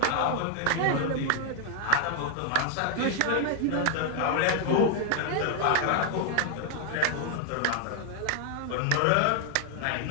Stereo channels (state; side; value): different; both; correlation 0.00